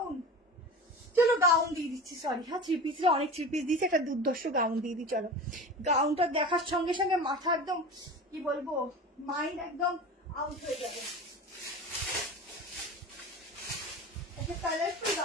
চলো গাউন দিয়ে দিচ্ছি, সরি হ্যাঁ 3 পিসে অনেক 3 পিস দিয়েছি, একটা দুর্ধর্ষ গাউন দিয়ে দিই। চলো গাউনটা দেখার সঙ্গে সঙ্গে মাথা একদম কি বলবো, মাইন্ড একদম আউট হয়ে যাবে। একটা কালারফুল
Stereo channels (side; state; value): both; normal; correlation 0.32